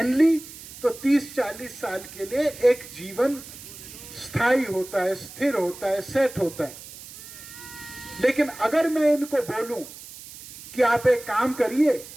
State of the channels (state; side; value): noise; right; hiss, 15 dB below the sound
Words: ली तो 30-40 साल के लिए एक जीवन स्थायी होता है, स्थिर होता है, सेट होता है। लेकिन अगर मैं इनको बोलूं कि आप एक काम करिए,